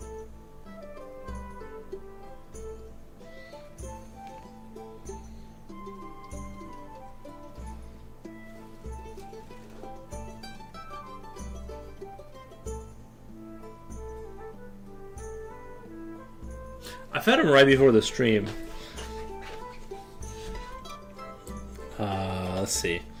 I fed him right before the stream. Let's see.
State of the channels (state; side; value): identical; both; correlation 1.00